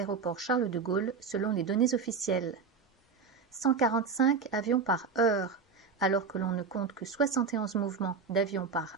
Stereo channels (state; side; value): quieter; left; 5.2 dB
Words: Charles de Gaulle selon les données officielles. 145 avions par heure, alors que l'on ne compte que 71 mouvements d'avions par